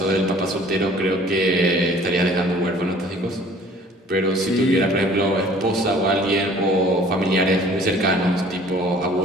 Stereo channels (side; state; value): both; normal; correlation 0.52